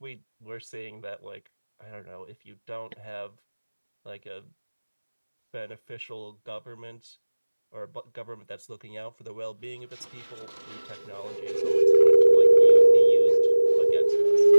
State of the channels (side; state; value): both; inverted; correlation -1.00